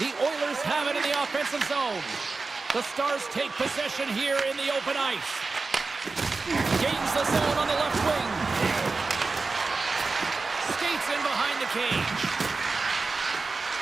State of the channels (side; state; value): left; quieter; 4.0 dB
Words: Oilers have it in the offensive zone. The Stars take possession here in the open ice. Gains the zone on the left wing. Skates in behind the cage.